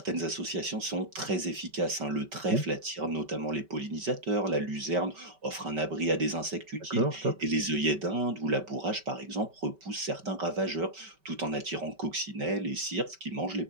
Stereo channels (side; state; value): left; late; 5.2 ms